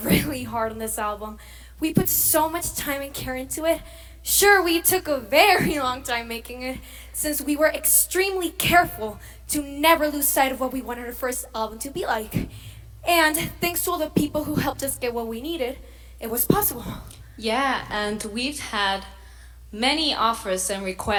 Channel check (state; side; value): identical; both; correlation 1.00